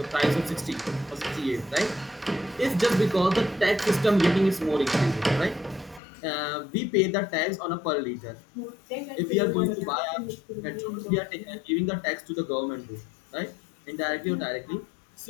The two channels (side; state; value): right; drops out; at 6.0 s